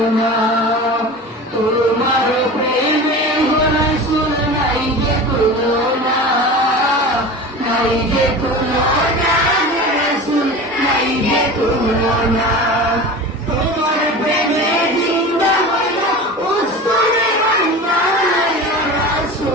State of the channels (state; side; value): normal; both; correlation 0.33